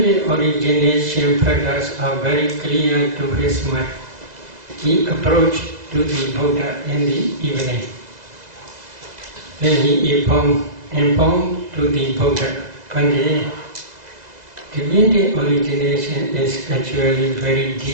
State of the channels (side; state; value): left; late; 2.0 ms